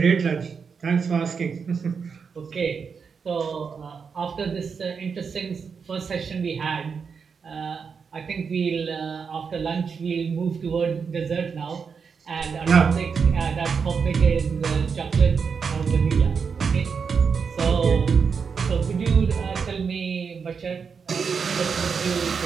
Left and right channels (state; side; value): quieter; left; 5.9 dB